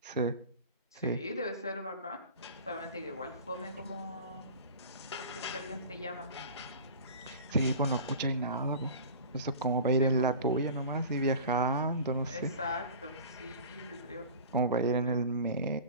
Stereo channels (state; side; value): inverted; both; correlation -0.37